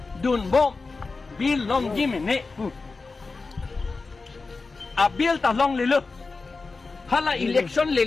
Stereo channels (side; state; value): right; quieter; 4.0 dB